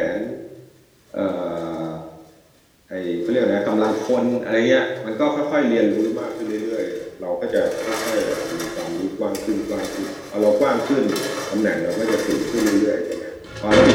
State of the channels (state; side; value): identical; both; correlation 1.00